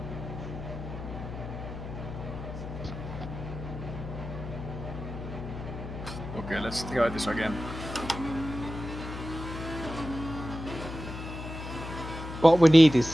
Okay, let's try this again. What we need is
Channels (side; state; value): left; noise; hum, 8 dB below the sound